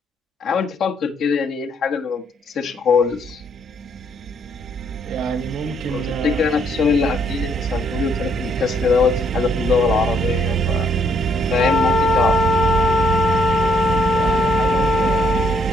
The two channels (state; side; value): normal; both; correlation 0.69